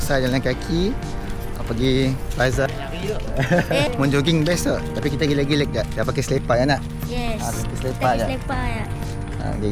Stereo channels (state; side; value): identical; both; correlation 1.00